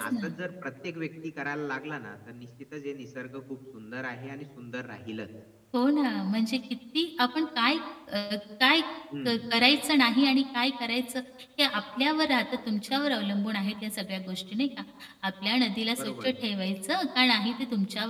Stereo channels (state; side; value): identical; both; correlation 1.00